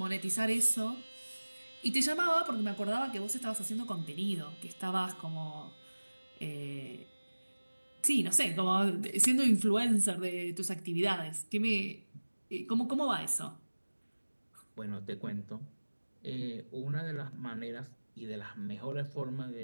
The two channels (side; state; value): both; inverted; correlation -1.00